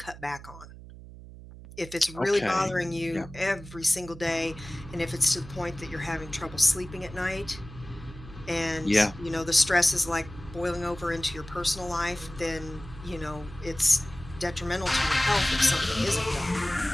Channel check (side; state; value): right; noise; hum, 16 dB below the sound